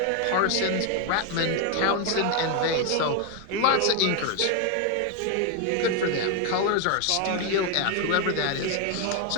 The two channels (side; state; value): both; different; correlation 0.01